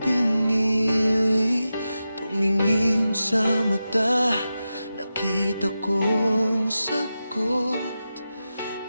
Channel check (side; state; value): both; inverted; correlation -0.91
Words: Tumingin sa mata, nakita kong sagot.